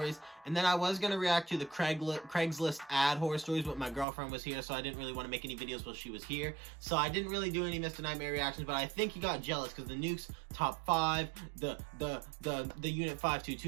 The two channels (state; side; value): drops out; left; at 4.0 s